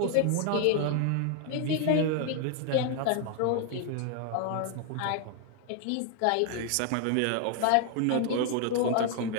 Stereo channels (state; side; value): different; both; correlation 0.00